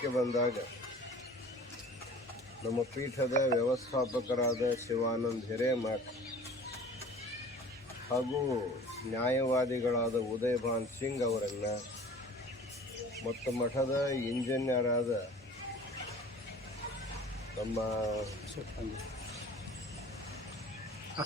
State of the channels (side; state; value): both; normal; correlation 0.44